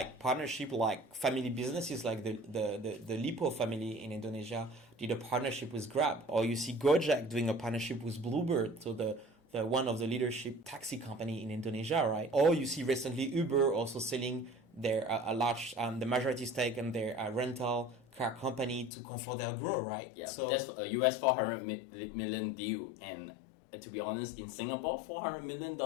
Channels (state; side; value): drops out; right; at 18.9 s